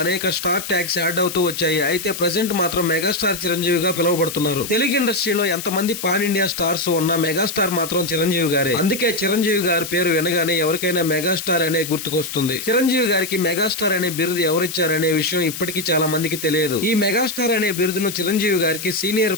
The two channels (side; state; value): left; noise; hiss, 8 dB below the sound